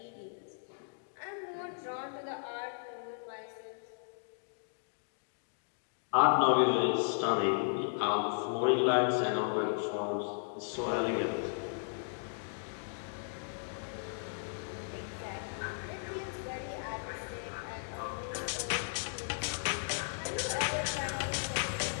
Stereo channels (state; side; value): silent; right; digital silence